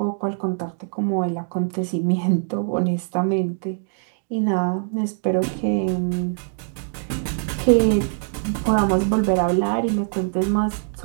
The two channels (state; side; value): silent; left; digital silence